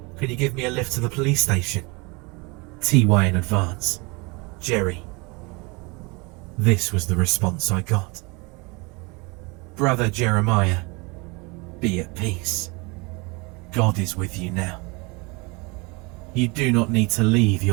Could you give me a lift to the police station? TY in advance. Jerry. This was the response I got. Brother Jeremiah, be at peace. God is with you now. You do not need to leave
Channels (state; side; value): quieter; left; 28.0 dB